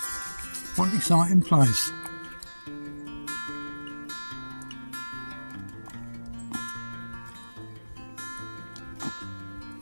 What an exciting place.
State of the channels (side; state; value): both; inverted; correlation -1.00